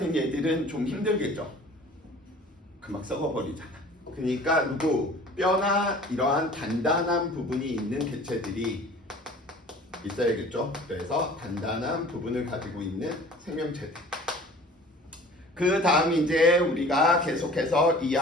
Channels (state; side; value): normal; both; correlation 0.46